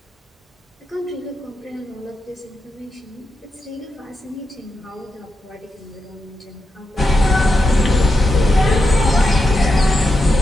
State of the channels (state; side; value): normal; both; correlation 0.87